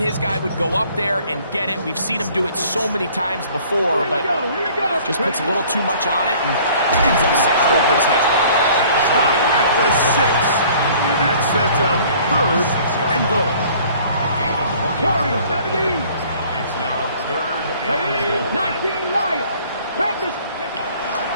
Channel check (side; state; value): both; inverted; correlation -0.54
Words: guy would go up there and get it. We've seen him do it so many times before, but just puts a little too much on it and ends up sailing over his head. Stop at the 6. And that sets up third and goal. Warriors 17. It's now third and goal. 19 Lions. Panthers.